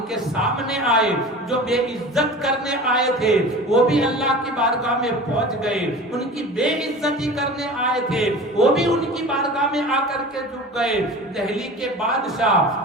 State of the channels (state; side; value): normal; both; correlation 0.37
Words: کے سامنے آئے جو بے عزت کرنے آئے تھے، وہ بھی اللہ کی بارگاہ میں پہنچ گئے، ان کی بے عزتی کرنے آئے تھے، وہ بھی ان کی بارگاہ میں آ کر کے جھک گئے۔ دہلی کے بادشاہ